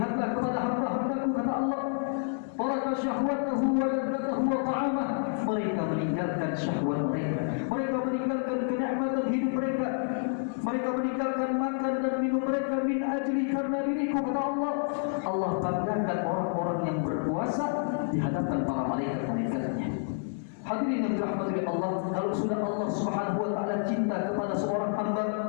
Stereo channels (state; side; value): silent; right; 58 dB below the other